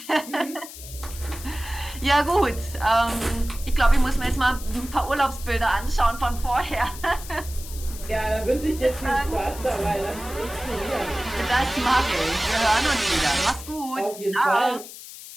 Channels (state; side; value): noise; left; hiss, 14 dB below the sound